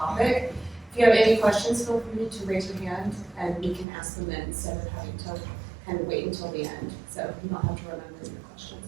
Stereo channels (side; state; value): left; drops out; at 3.9 s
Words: if you have any questions, feel free to raise your hand and we can ask them then instead of having to kind of wait until the end. So you don't have to remember your questions,